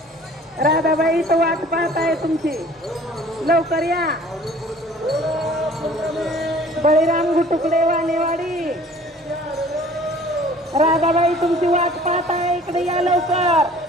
राधाबाई तो वाट पाहत आहे तुमची, लवकर या. बळीराम गुटुकडे वानेवाडी, राधाबाई तुमची वाट पाहत आहे, इकडे या लवकर.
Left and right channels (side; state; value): both; normal; correlation 0.51